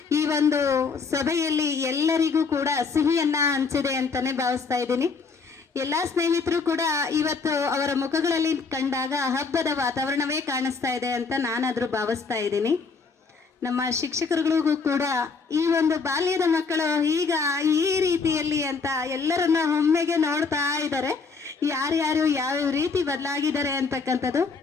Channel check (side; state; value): right; quieter; 4.8 dB